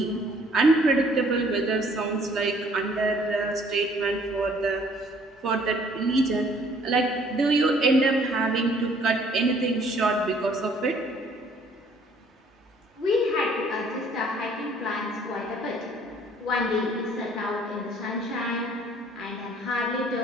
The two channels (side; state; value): both; normal; correlation 0.59